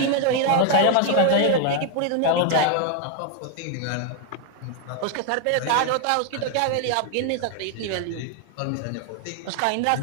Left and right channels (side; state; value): both; different; correlation 0.00